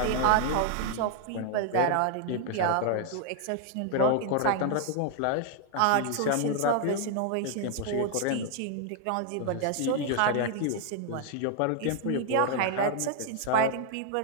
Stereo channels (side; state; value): both; different; correlation 0.00